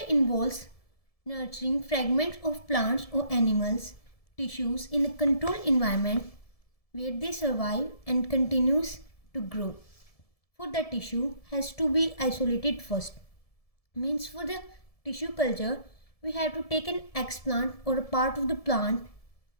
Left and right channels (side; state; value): right; late; 1.7 ms